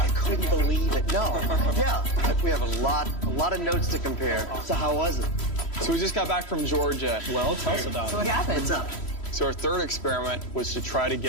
couldn't believe it. No. Yeah. We have a lot of notes to compare. So how was it? So we just got back from Georgia. Well, tell us about it. What happened? What's up? So our third experiment was to try to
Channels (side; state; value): right; late; 3.1 ms